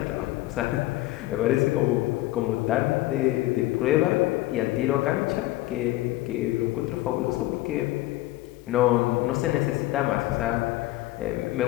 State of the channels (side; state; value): right; quieter; 17.5 dB